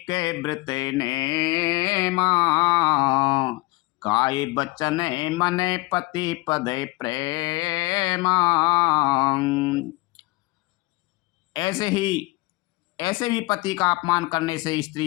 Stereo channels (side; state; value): right; quieter; 22.6 dB